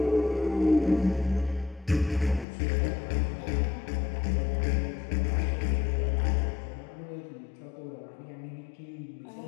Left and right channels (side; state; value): right; drops out; at 2.5 s